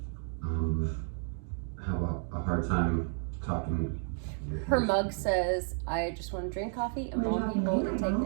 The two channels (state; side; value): silent; left; 57 dB below the other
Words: have a hard time talking. Her mug says, I just want to drink coffee and bone people and take